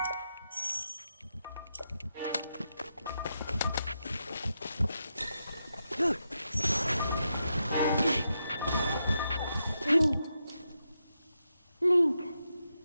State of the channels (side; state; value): both; inverted; correlation -0.85